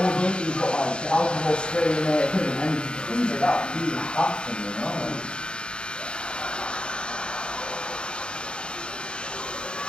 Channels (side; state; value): right; late; 0.053 ms